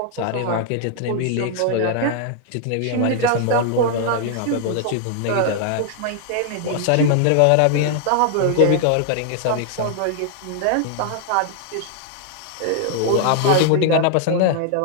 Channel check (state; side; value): different; both; correlation -0.01